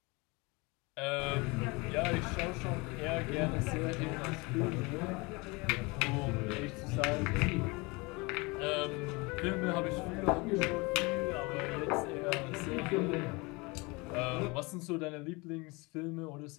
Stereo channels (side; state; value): right; quieter; 26.2 dB